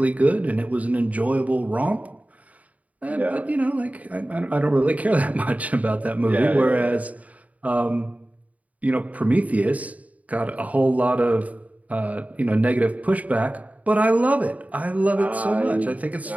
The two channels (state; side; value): late; left; 0.071 ms